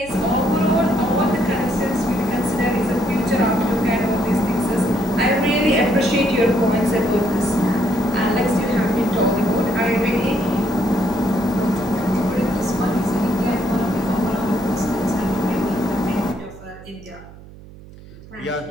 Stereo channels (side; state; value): right; noise; hum, 19 dB below the sound